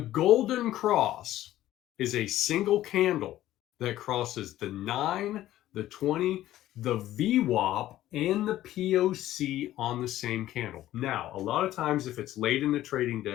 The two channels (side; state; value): right; quieter; 14.0 dB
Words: cross is a single candle that crosses the 9, the 20, the VWAP, and the POC on the same candle. Now, a lot of times, if it's late in the trading